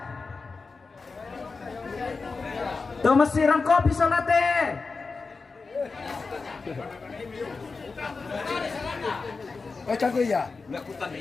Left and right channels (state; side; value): quieter; right; 4.3 dB